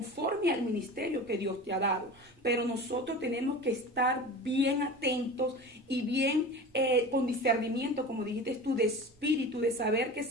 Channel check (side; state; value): both; normal; correlation 0.34